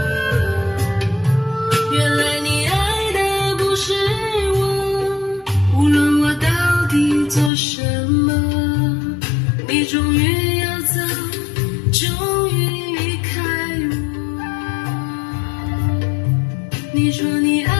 原来你爱的不是我，无论我到底做什么，你终于要走，终于离开我。你说你爱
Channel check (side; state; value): right; drops out; at 7.5 s